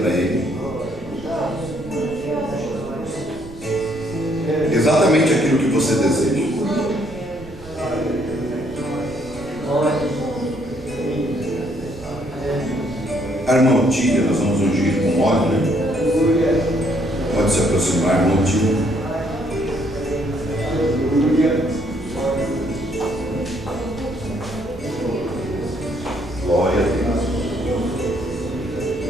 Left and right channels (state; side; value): noise; right; rumble, 17 dB below the sound